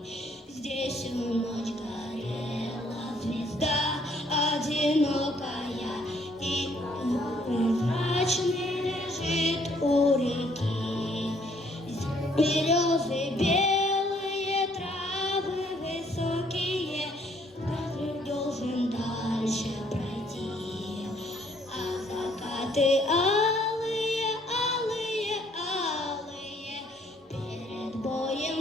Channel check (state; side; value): normal; both; correlation 0.65